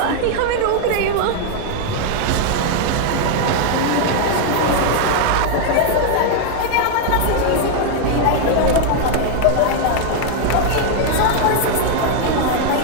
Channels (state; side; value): different; both; correlation 0.00